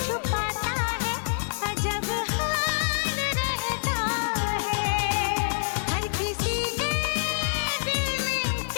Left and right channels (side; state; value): right; silent; digital silence